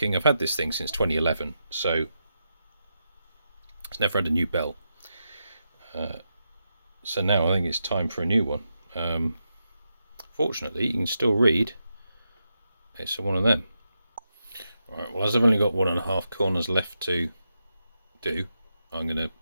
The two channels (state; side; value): inverted; both; correlation -0.86